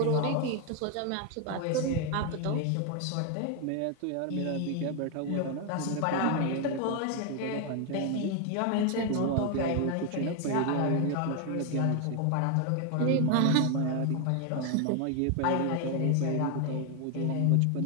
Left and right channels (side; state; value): both; different; correlation 0.01